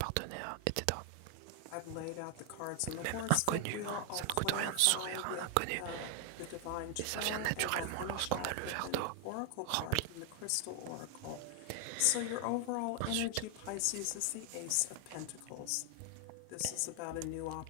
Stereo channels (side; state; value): both; different; correlation 0.00